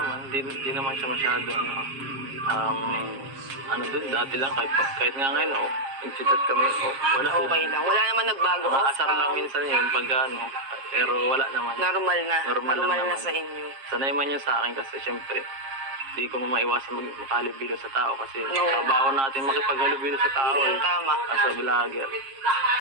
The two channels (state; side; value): late; left; 7.4 ms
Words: Di naman siya masyado, dun, dati lang, kahit nga ngayon, nag-chat kami, wala. Okay lang. Wala naman nagbago. Asar lang minsan yun, pero wala naman. Normal na. Normal lang na naman. sa inyo. Sanay man yun sa akin kasi syempre, di ko maiwasan makahalubilo sa tao kasi No. trabaho natin makipaghalubilo sa tao. Tama. As a vlogger.